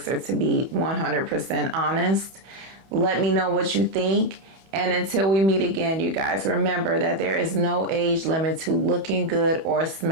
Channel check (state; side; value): late; left; 31 ms